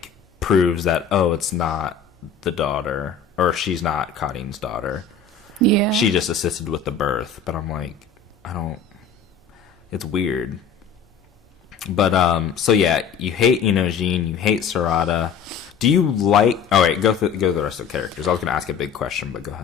proves that, oh, it's not the daughter, or she's not Kadin's daughter. Yeah. She just assisted with the birth. But I'm like, it's weird. But so yeah, you hate Inojin, you hate Sarada. Do you like... Oh, wait, go through the rest of the characters. I was going to ask a big question, but go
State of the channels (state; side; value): quieter; right; 6.2 dB